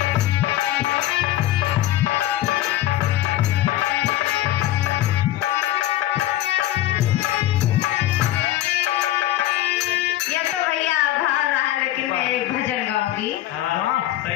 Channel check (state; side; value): quieter; right; 14.1 dB